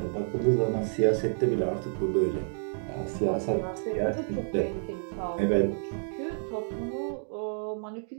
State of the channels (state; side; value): silent; left; digital silence